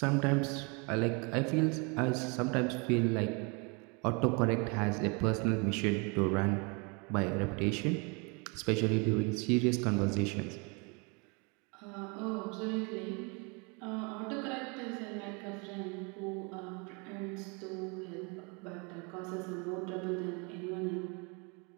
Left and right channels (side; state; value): left; quieter; 31.8 dB